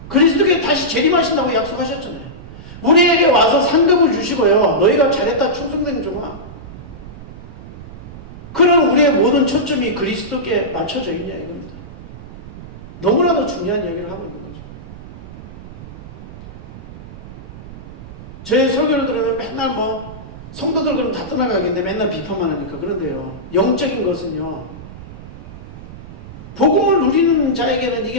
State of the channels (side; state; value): right; noise; rumble, 15 dB below the sound